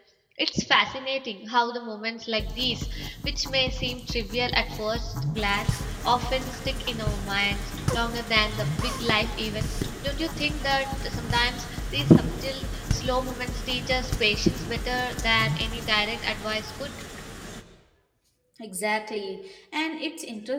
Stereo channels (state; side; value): identical; both; correlation 1.00